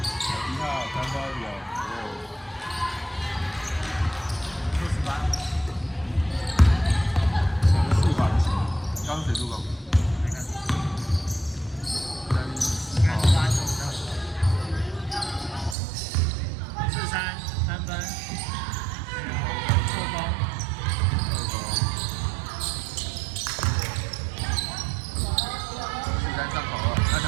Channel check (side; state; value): left; drops out; at 15.8 s